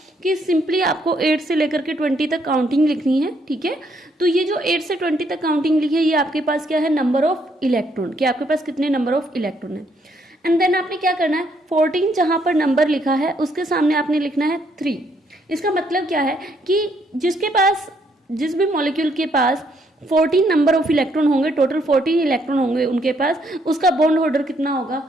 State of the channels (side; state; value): both; normal; correlation 0.71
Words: कि सिंपली आपको 8 से लेकर के 20 तक काउंटिंग लिखनी है, ठीक है। तो ये जो 8 से 20 तक काउंटिंग लिखी है, ये आपके पास क्या है, नंबर ऑफ इलेक्ट्रॉन, कि आपके पास कितने नंबर ऑफ इलेक्ट्रॉन है। एंड देन आपने क्या करना है, 14 जहां पर नंबर लिखा है उसके सामने आपने लिखना है 3। इसका मतलब क्या है कि जिस भी मॉलिक्यूल के पास 14 नंबर ऑफ इलेक्ट्रॉन होंगे, टोटल 14 इलेक्ट्रॉन होंगे उनके पास, उसका बॉन्ड ऑर्डर कितना होगा,